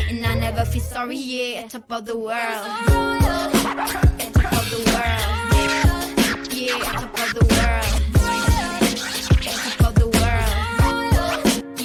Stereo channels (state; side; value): identical; both; correlation 1.00